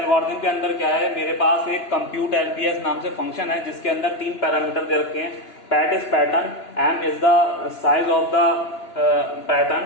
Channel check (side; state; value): right; late; 2.9 ms